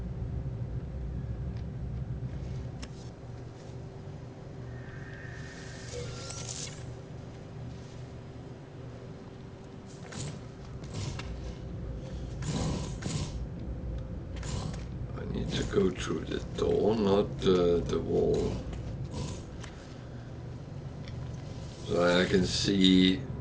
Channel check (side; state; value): both; identical; correlation 1.00